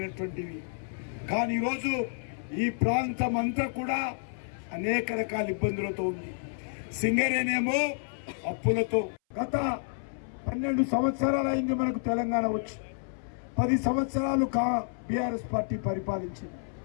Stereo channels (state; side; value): silent; right; 58 dB below the other